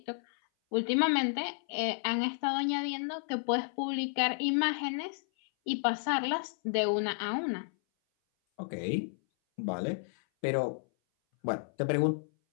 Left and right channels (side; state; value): right; silent; 57 dB below the other